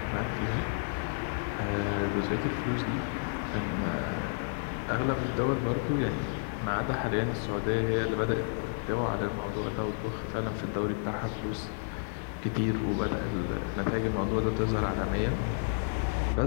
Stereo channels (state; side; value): silent; right; digital silence